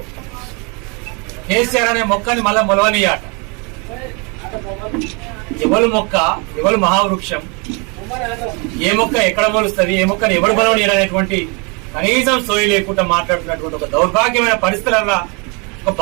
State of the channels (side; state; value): left; quieter; 31.9 dB